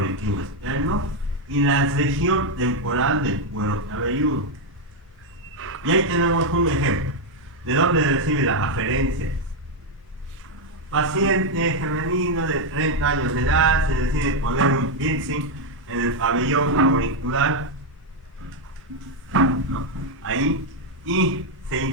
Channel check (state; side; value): normal; both; correlation 0.03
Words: externo y la región temporal del cuero cabelludo. Y ahí tenemos un ejemplo. ¿De dónde recibe la aferencia? Paciente femenino de 30 años de edad se decide poner un piercing en el pabellón auricular, ¿no? Ahí, y se